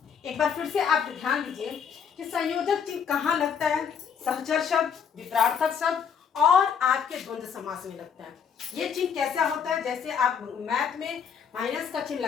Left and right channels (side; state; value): right; quieter; 7.2 dB